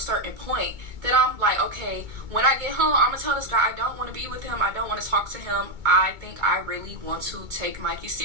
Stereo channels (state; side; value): late; left; 2.2 ms